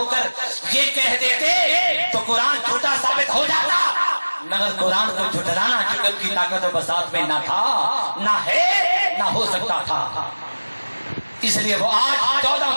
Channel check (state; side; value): inverted; both; correlation -1.00